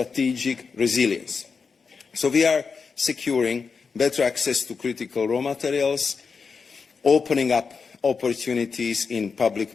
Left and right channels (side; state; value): right; quieter; 5.3 dB